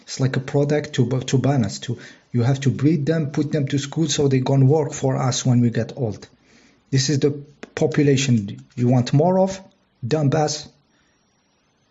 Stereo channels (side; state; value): both; identical; correlation 1.00